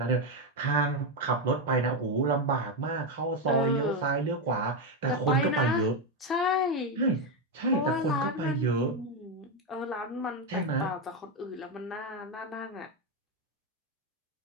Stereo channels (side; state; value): both; normal; correlation 0.07